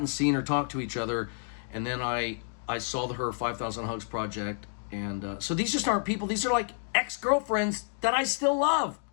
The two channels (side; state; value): right; silent; digital silence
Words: seen or talked to each other. And then I saw her 5,000 Hugs project. And so these just aren't people. These are like ex-girlfriends that I still love.